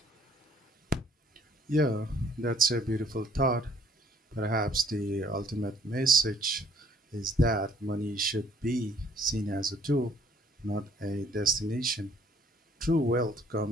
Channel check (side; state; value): both; normal; correlation 0.61